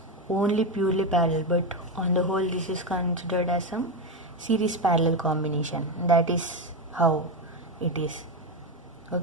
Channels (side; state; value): both; normal; correlation 0.12